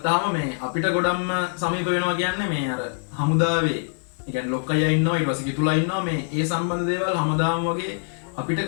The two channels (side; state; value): right; silent; digital silence